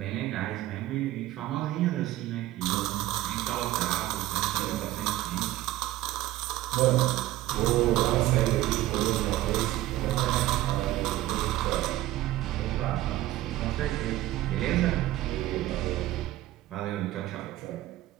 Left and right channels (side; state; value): left; quieter; 15.6 dB